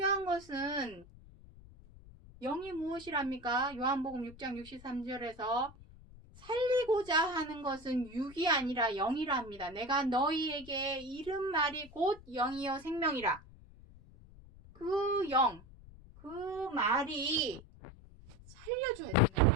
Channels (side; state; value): left; noise; rumble, 21 dB below the sound